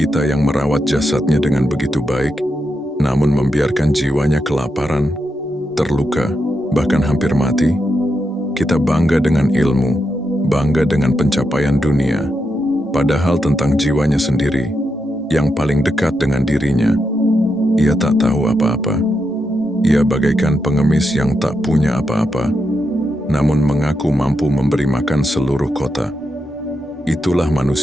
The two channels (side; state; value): both; normal; correlation 0.84